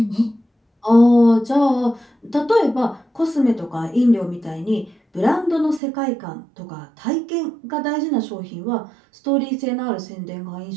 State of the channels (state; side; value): drops out; left; at 5.8 s